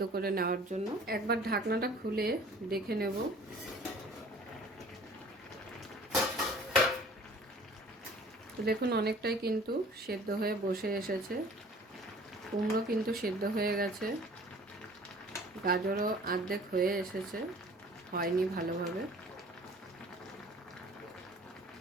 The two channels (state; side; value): normal; both; correlation 0.49